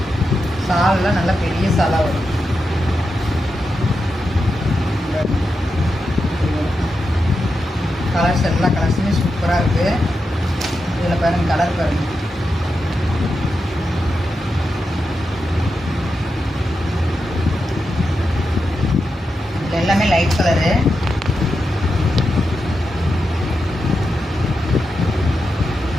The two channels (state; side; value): normal; both; correlation 0.88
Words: சால்லாம் நல்லா பெரிய சாலாக வரும். கலர்ஸ் எல்லா கலர்ஸுமே சூப்பராக இருக்குது. இதில் பாருங்கள் கலர் பாருங்கள். இதில் எல்லாமே லைட் கலரு.